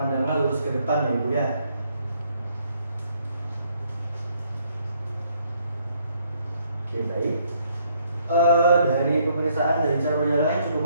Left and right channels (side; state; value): both; inverted; correlation -0.68